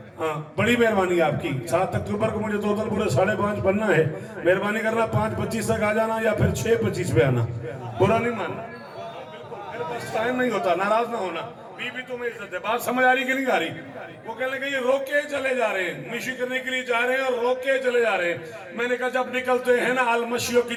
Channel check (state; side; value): identical; both; correlation 1.00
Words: हाँ, बड़ी मेहरबानी आपकी। 7 अक्टूबर को मुझे टोटल पूरे 5:30 बनना है। मेहरबानी करना 5:25 तक आ जाना या फिर 6:25 पे आना, बुरा नहीं मानना। मेरे पास टाइम नहीं होता, नाराज ना होना। बीबी तुम्हें इज्जत है। बात समझ आ रही कि नहीं आ रही? वो कहने लगे ये रोक के चले जा रहे हैं, मिशी करने के लिए जा रहे हैं और रोक के चले जा रहे हैं। मैंने कहा जब निकलते हैं ना अल-मशियों की